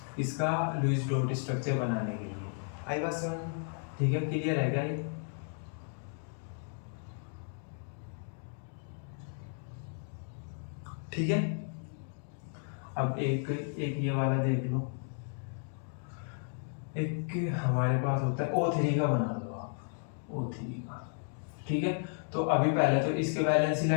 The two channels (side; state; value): right; silent; 55 dB below the other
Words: इसका लुईस डॉट स्ट्रक्चर बनाने के लिए। आई बात समझ में? ठीक है, क्लियर है क्या ये? ठीक है, अब एक ये वाला देख लो। एक हमारे पास होता है O3 का बना दो आप, O3 का। ठीक है, तो अभी पहले तो इसके वैलेंस